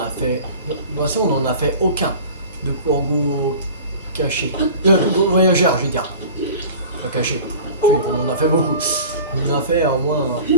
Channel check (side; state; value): both; inverted; correlation -0.39